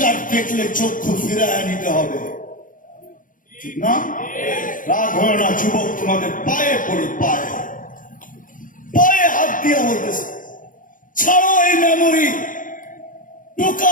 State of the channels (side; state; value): right; late; 0.39 ms